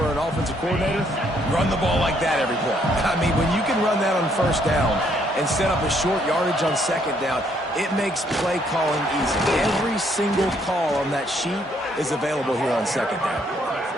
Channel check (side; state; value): both; normal; correlation 0.69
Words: an offensive coordinator? Run the ball like that every play. I mean, when you can run that on first down and set up a short yardage on second down, it makes play calling easy. Every single call on that sheet is available here on second down.